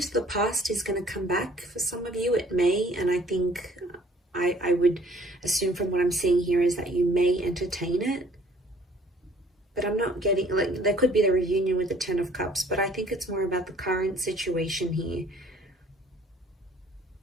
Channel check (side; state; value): both; normal; correlation 0.57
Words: the past is going to come back. For some of you, it may, and I think I would assume from what I'm seeing here is that you may entertain it. But I'm not getting, like, there could be the reunion with the Ten of Cups, but I think it's more about the current situation here.